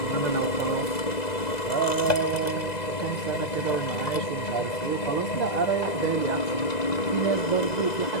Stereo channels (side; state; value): right; late; 2.0 ms